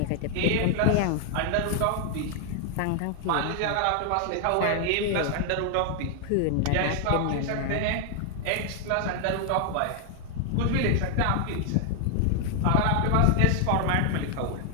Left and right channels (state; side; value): different; both; correlation 0.00